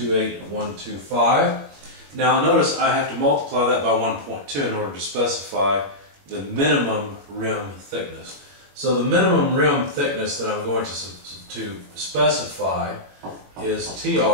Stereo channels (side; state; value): left; late; 21 ms